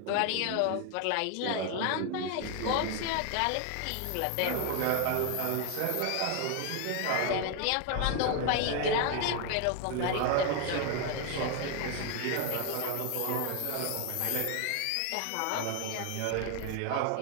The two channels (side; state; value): both; different; correlation 0.01